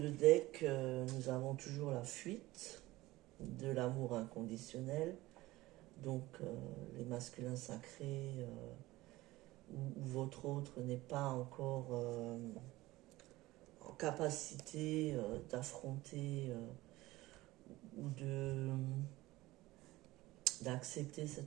deck, nous avons toujours la fuite de l'amour inconditionnel. Donc, les masculins sacrés ou votre autre n'est pas encore en capacité d'affronter ou d'accepter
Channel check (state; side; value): quieter; left; 18.5 dB